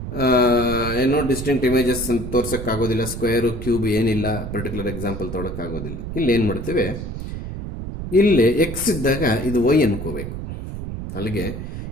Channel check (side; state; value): right; noise; rumble, 7 dB below the sound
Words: ಏನೋ ಡಿಸ್ಟಿಂಕ್ಟ್ ಇಮೇಜಸ್ ಅಂತ ತೋರ್ಸೋಕ್ಕಾಗೋದಿಲ್ಲ, ಸ್ಕ್ವೇರು ಕ್ಯೂಬ್ ಏನಿಲ್ಲ, ಪರ್ಟಿಕ್ಯುಲರ್ ಎಕ್ಸಾಂಪಲ್ ತೊಗೊಳಕ್ಕಾಗೋದಿಲ್ಲ. ಇಲ್ಲಿ ಏನು ಮಾಡ್ತೇವೆ, ಇಲ್ಲಿ ಎಕ್ಸ್ ಇದ್ದಾಗ ಇದು ವೈ ಅನ್ಕೋಬೇಕು. ಅಲ್ಲಿಗೆ